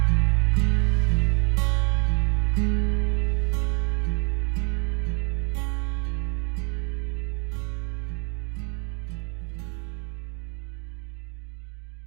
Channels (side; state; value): left; quieter; 38.0 dB